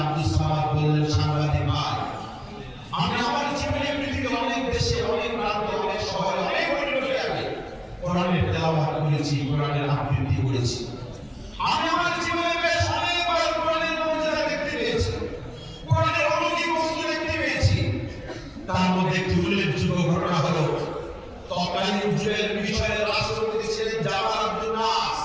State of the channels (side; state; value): both; identical; correlation 1.00